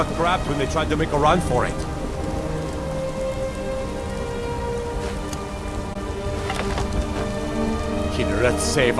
grabbed when they tried to make a run for it. Killer, save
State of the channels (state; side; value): identical; both; correlation 1.00